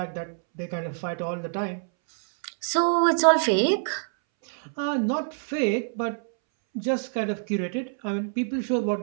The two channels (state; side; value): silent; left; 61 dB below the other